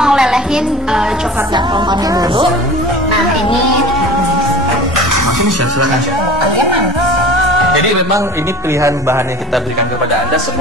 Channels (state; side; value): normal; both; correlation 0.38